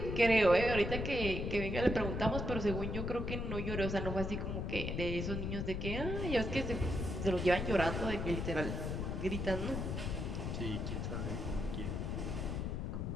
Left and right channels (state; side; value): noise; left; rumble, 2 dB below the sound